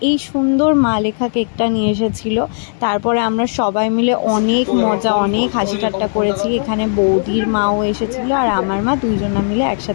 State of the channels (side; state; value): right; silent; digital silence